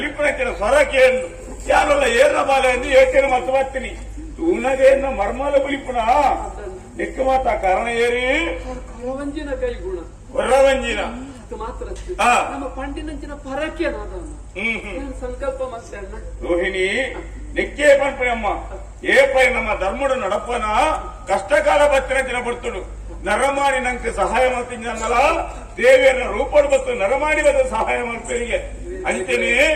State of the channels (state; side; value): identical; both; correlation 1.00